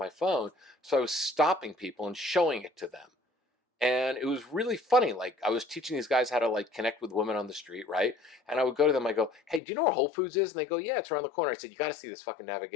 phone, so I was stopping people and showing it to them. And it was really funny. Like, I was teaching these guys how to like connect with women on the street, right? And I would go to them, I go, "Hey, do you know where Whole Foods is?" And they go, "Yeah, it's around the corner." I said, "You got to see this fucking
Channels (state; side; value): drops out; right; at 9.6 s